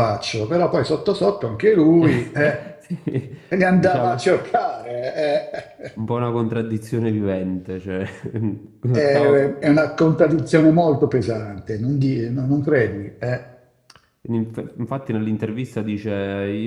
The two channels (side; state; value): both; identical; correlation 1.00